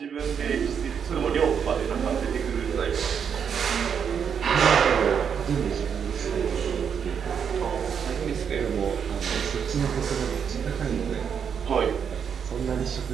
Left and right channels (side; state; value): left; quieter; 7.3 dB